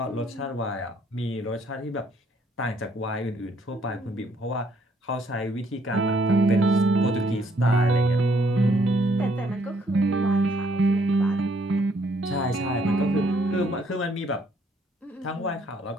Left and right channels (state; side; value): normal; both; correlation 0.67